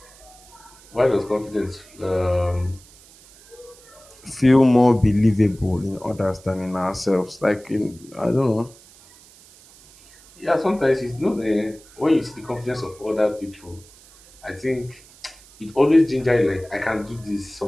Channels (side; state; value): right; noise; hiss, 24 dB below the sound